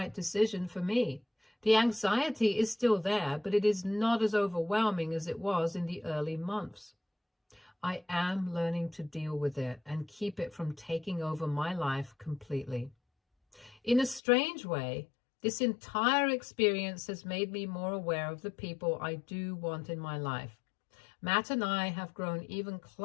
decision for me. The anxiety is still there, but it is not as overwhelming as it was in the early months. I am learning to deal with it and keep it from taking over my life completely. In a strange way, this entire experience has made me more aware of the people I do want in my life. Matt and I have grown even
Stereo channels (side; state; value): right; drops out; at 14.2 s